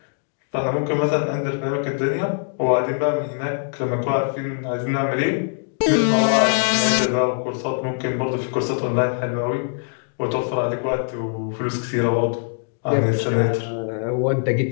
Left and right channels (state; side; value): silent; right; digital silence